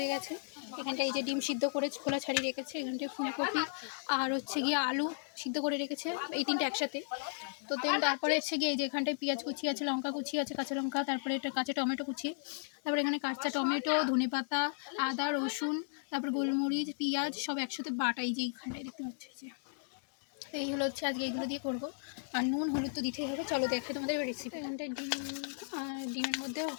গেছে। এখানটায় এই যে ডিম সিদ্ধ করে খোলা ছাড়িয়ে রেখেছে। এখানটায় ফুলকপি আর হচ্ছে গিয়ে আলু সিদ্ধ করে রেখেছে, এই তিনটে একসাথে। তো দেন তারপরে হচ্ছে গিয়ে এই যে এখানটায় পেঁয়াজ কুচি আছে, লঙ্কা কুচি আছে, কাঁচা লঙ্কা, তারপরে এটা কাঁচা টমেটো কুচি, তারপরে এখানে কাঁচা টমেটো, ধনেপাতা, আদা, রসুন, তারপর গোলমরিচ, পেঁয়াজ সব একসাথে বাটা। এই যে এইখানটায় দেখতে পাচ্ছি যে এই হলো হচ্ছে আজকে এইগুলো দিয়ে করবো। আর নুন হলুদ তো দিতেই হবে। চলো দেখাই তোমাদের রেসিপি। এখানটায় ডিম আর ডিমের মধ্যে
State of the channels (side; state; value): right; silent; digital silence